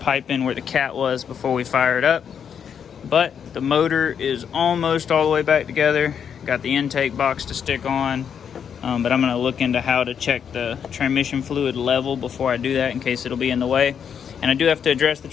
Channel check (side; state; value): right; quieter; 7.7 dB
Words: in where the cat was before we fire it up. But the motor is almost all the way back together. Got the intake box to stick on, but I'm gonna look into how to check the transmission fluid level before I do that, in case it'll be in the way. And I do have to address the